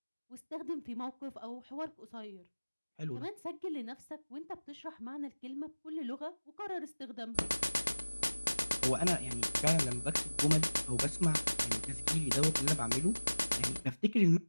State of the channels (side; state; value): both; inverted; correlation -1.00